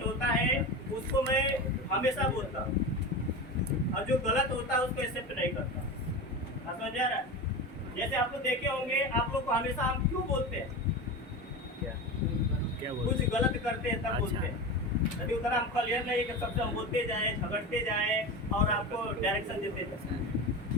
होता है उसको मैं हमेशा बोलता हूँ, और जो गलत होता है उसको एक्सेप्ट नहीं करता। समझ आ रहा है? जैसे आप लोग देखे होंगे, आप लोग को हमेशा हम क्यों बोलते हैं? क्या कुछ गलत करते हैं तब बोलते हैं। यदि उतना हम क्लियर नहीं कि सबसे हम बोलते जाए, झगड़ते जाए और आपको डायरेक्शन देते जाए।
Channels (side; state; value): both; normal; correlation 0.25